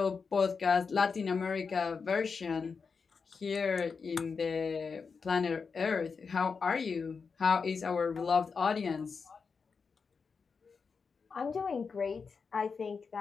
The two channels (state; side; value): quieter; right; 5.3 dB